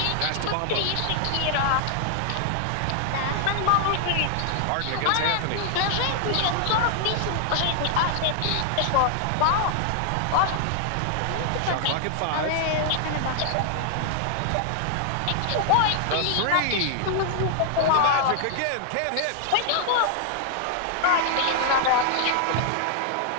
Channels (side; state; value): both; different; correlation 0.00